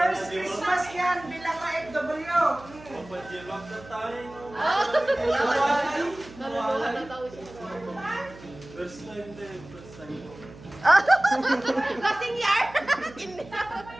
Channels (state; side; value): noise; right; hum, 19 dB below the sound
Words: Christmas yan bilang ka FW. Naluluhan na tao siya. First time din, first time. Lasing yar!